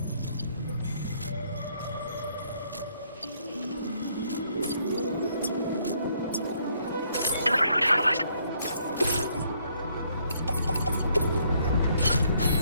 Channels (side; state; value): both; inverted; correlation -0.69